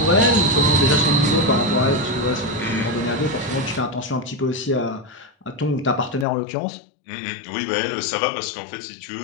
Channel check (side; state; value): right; drops out; at 6.2 s